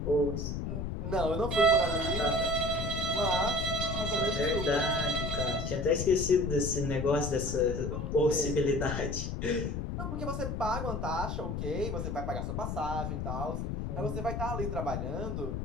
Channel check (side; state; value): left; noise; rumble, 3 dB below the sound